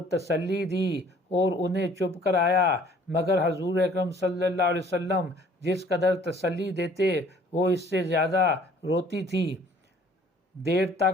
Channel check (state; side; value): normal; both; correlation 0.55